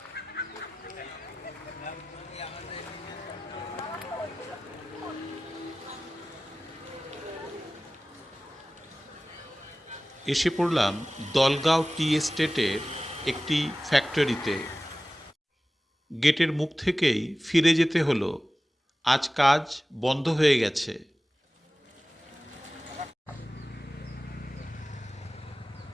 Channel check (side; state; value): both; normal; correlation 0.96